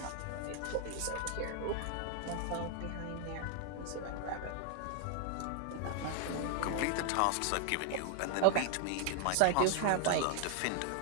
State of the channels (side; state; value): both; different; correlation 0.00